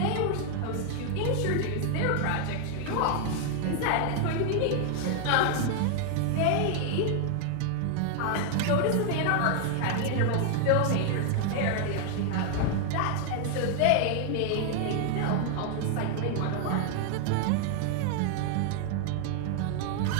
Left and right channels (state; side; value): different; both; correlation 0.00